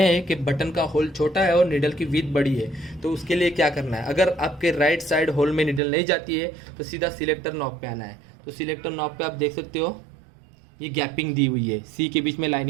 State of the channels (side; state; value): left; drops out; at 5.8 s